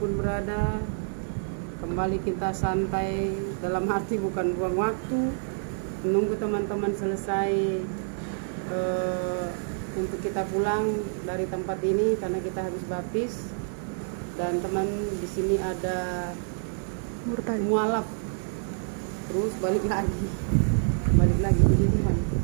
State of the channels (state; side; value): silent; left; digital silence